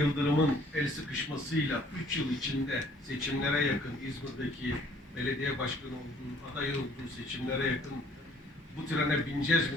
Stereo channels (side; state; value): both; normal; correlation 0.58